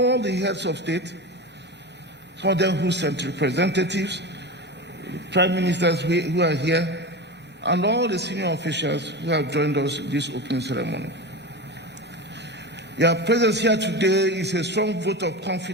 the heads of state, some of them who sent representatives, prime ministers who are here, and all the senior officials who have joined us in this opening ceremony. Your presence here today is a strong vote of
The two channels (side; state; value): both; normal; correlation 0.25